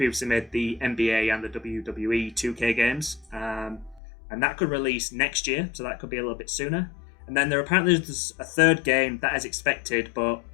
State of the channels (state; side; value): drops out; right; at 4.0 s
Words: made the NBA and the WWE 2K games. And that could release next year, so that could be a little bit sooner. And then there's a third game that is expected, but